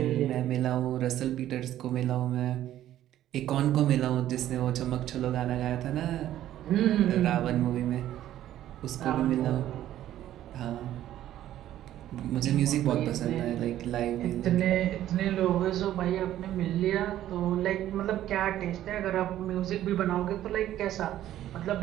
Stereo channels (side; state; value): left; quieter; 12.6 dB